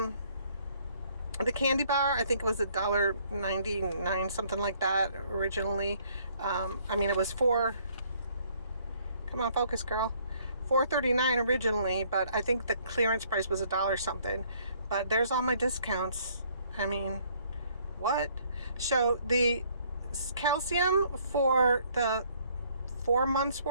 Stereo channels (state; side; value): inverted; both; correlation -0.63